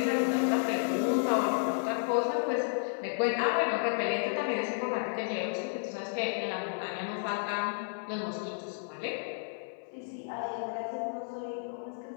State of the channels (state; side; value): silent; right; 56 dB below the other